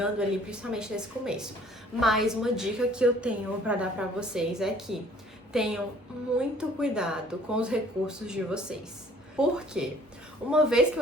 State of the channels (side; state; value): both; normal; correlation 0.56